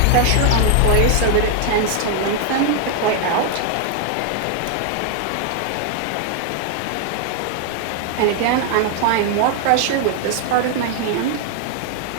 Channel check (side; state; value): both; different; correlation 0.00